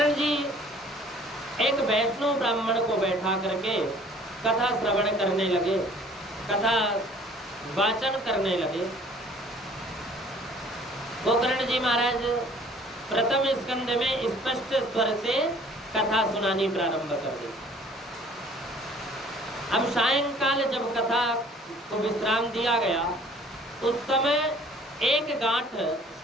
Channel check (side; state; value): both; normal; correlation 0.54